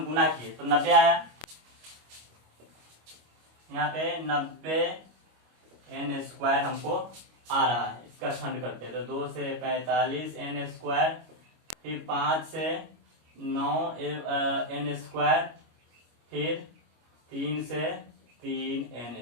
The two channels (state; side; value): late; left; 25 ms